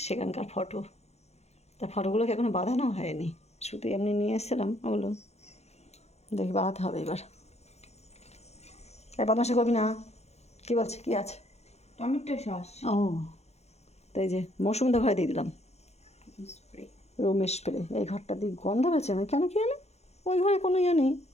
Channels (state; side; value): late; right; 0.31 ms